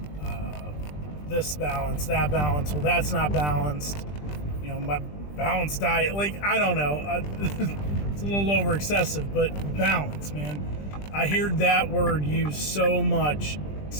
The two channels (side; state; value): right; late; 20 ms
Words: this balance, that balance. Well, that's not balanced. My balanced diet, I don't know. It's a little over excessive, but balance, man. I hear that word used so much,